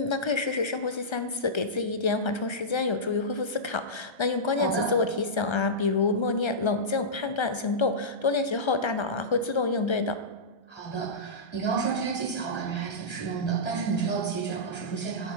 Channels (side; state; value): right; late; 1.3 ms